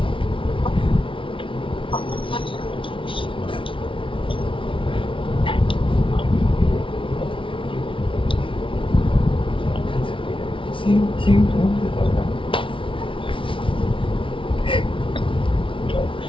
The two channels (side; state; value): right; late; 0.25 ms